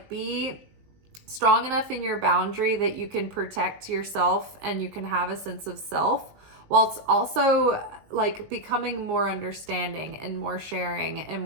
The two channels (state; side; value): late; left; 19 ms